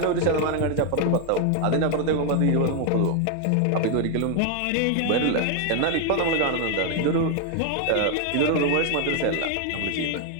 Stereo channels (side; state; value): both; different; correlation 0.00